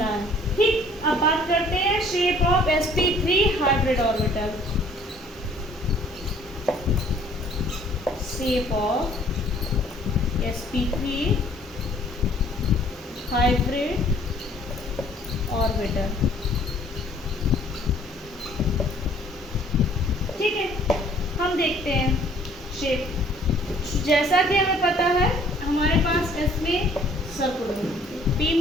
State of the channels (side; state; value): both; normal; correlation 0.57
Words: है। ठीक, अब बात करते हैं shape of sp3 hybrid orbital. Shape of sp3 hybrid orbital. ठीक है, हम देखते हैं शेप। जैसा कि हमें पता है हमारे पास S में सर्कुलर होती है, P